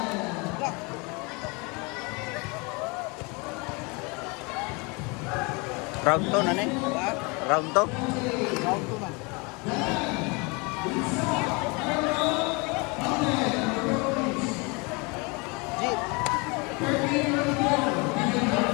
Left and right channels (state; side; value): quieter; right; 28.9 dB